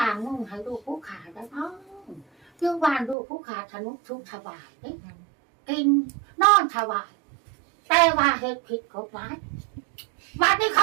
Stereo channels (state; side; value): drops out; left; at 3.2 s